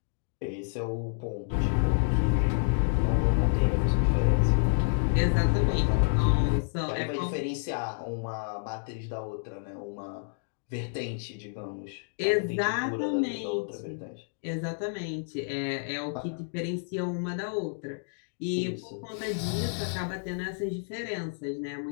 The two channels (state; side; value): silent; right; digital silence